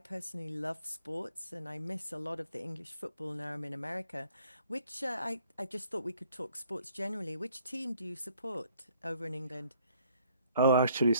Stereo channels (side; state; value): both; inverted; correlation -0.63